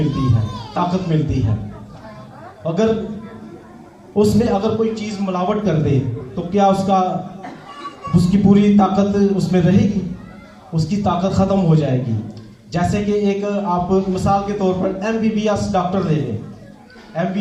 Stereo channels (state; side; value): identical; both; correlation 1.00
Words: है, ताकत मिलती है। अगर उसमें अगर कोई चीज़ मिलावट कर दे तो क्या उसकी पूरी ताकत उसमें रहेगी? उसकी ताकत ख़त्म हो जाएगी। जैसे कि एक आप मिसाल के तौर पर MBBS डॉक्टर ले लें।